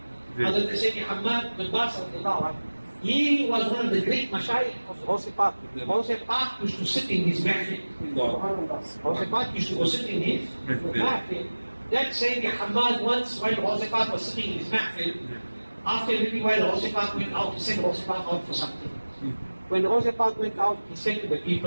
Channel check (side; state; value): both; inverted; correlation -1.00